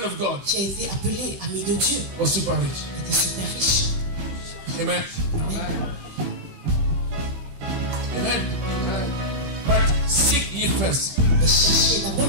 of God qui a été appelé ami de Dieu was super rich. était super riche. Amen. Amen. Amen. But seek ye first Mais cherchez d'abord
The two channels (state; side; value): late; left; 16 ms